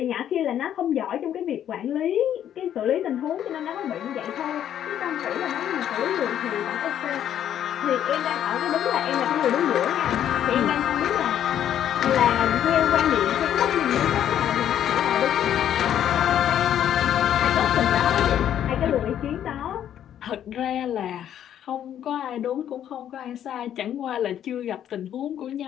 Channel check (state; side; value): quieter; right; 10.4 dB